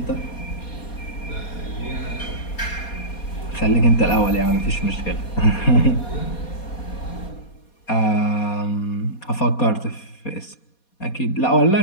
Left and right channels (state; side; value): late; right; 4.2 ms